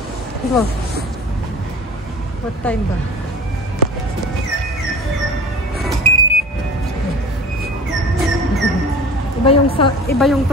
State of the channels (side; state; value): both; normal; correlation 0.40